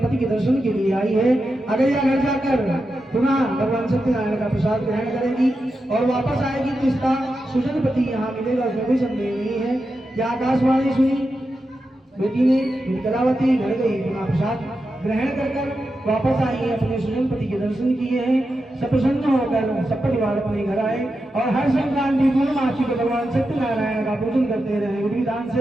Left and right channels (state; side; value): normal; both; correlation 0.89